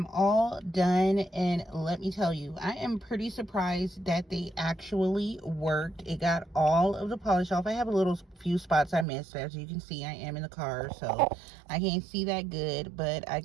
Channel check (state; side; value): drops out; left; at 9.1 s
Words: all done, and let me tell you, I am pretty surprised that they actually worked. It got all of the polish off. I have a little few spots I missed. As you can see, I am in the car, so I can't see that good, but I